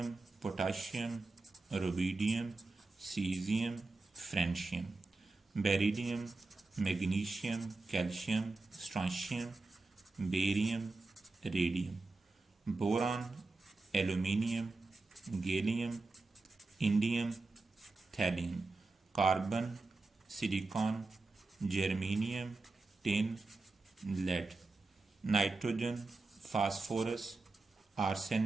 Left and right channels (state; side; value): quieter; left; 3.4 dB